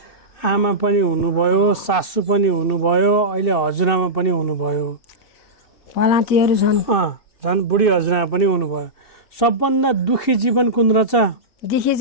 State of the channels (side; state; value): right; late; 2.6 ms